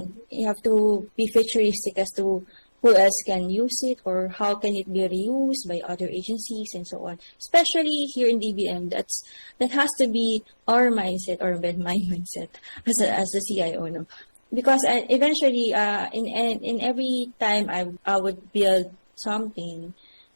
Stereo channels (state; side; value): inverted; both; correlation -1.00